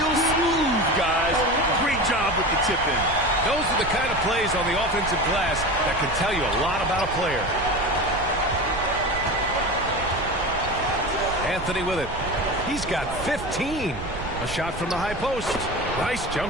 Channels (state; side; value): noise; right; rumble, 11 dB below the sound